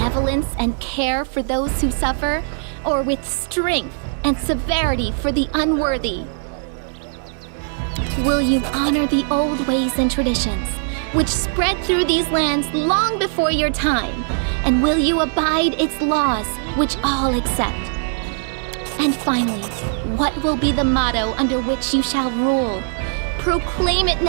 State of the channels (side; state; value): left; silent; digital silence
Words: and care for those who suffer, or with strength and severity for the unworthy? Will you honor the old ways and traditions, which spread through these lands long before your time? And will you abide its laws, which all accept? And finally, what will be the motto under which you shall rule? Proclaim it